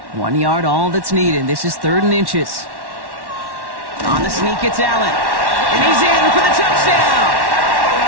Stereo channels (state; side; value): late; left; 1.1 ms